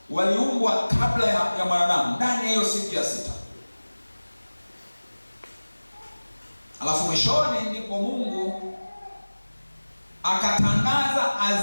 waliumbwa kabla ya mwanadamu ndani ya hiyo siku ya sita. Alafu mwishoni ndipo Mungu akatangaza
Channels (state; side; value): inverted; both; correlation -1.00